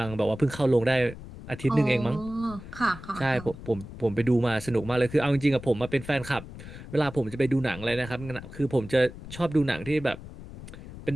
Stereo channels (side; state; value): left; noise; rumble, 14 dB below the sound